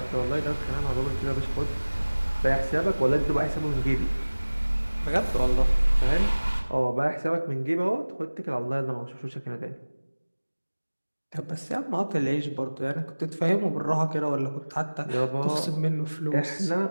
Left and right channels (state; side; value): inverted; both; correlation -1.00